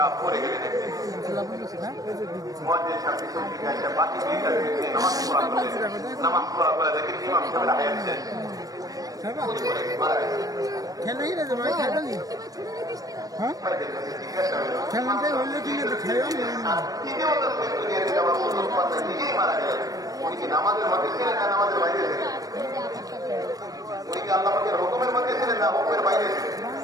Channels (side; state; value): left; late; 0.18 ms